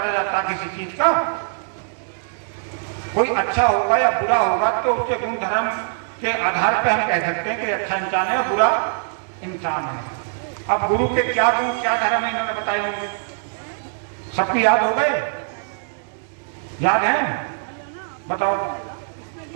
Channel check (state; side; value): silent; left; digital silence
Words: जाता किसी चीज का। कोई अच्छा होगा या बुरा होगा तो उसके गुण धर्म के आधार पर हम कह सकते हैं कि अच्छा इंसान है, बुरा इंसान है। अब गुरु के क्या गुण क्या धर्म है इन्होंने बताए होंगे, सबकी याद हो गए? याद है? बताओ,